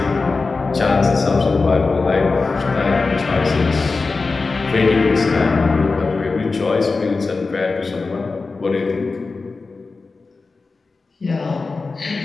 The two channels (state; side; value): quieter; right; 4.0 dB